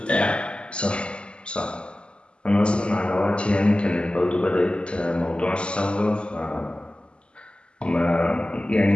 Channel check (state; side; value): late; right; 0.053 ms